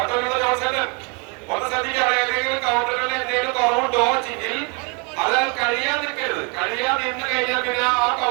ജോൺസേട്ടൻ ഒന്ന് ശ്രദ്ധിക്കുക. ഏതെങ്കിലും കൗണ്ടറുകളിൽ എന്തെങ്കിലും കുറവുണ്ടോ എങ്കിൽ അത് കഴിയാൻ നിൽക്കരുത്. കഴിയാൻ നിന്ന് കഴിഞ്ഞാൽ പിന്നെ ആ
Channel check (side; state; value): left; quieter; 32.9 dB